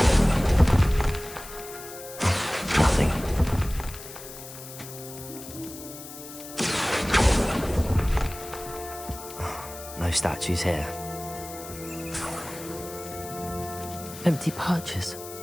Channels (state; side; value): noise; left; hiss, 13 dB below the sound